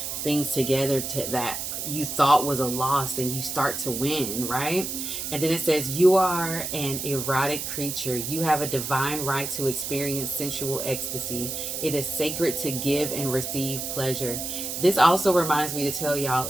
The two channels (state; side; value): noise; right; hiss, 4 dB below the sound